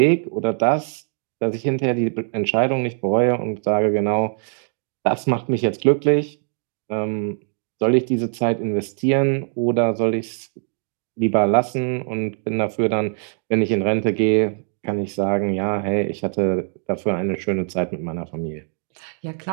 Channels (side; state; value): left; silent; 57 dB below the other